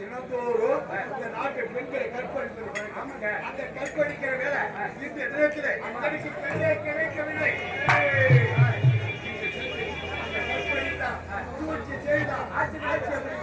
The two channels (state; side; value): identical; both; correlation 1.00